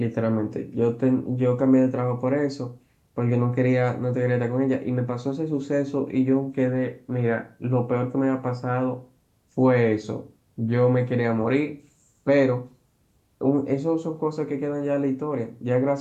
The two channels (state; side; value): identical; both; correlation 1.00